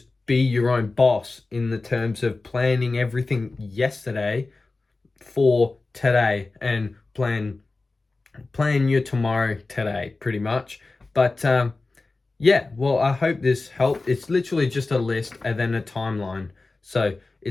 be your own boss in the terms of planning everything yesterday for today, and plan your tomorrow today, pretty much. But yeah, well, I hope this helped. It's literally just a list and then a timeline. So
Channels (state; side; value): quieter; right; 3.5 dB